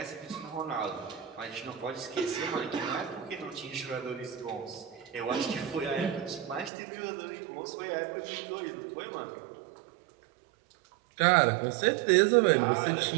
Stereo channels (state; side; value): drops out; left; at 6.7 s